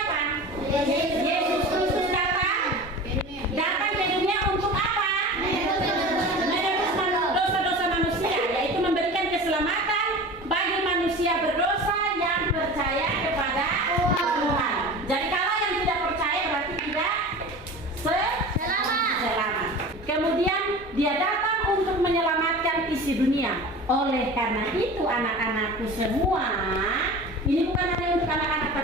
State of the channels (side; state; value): both; normal; correlation 0.35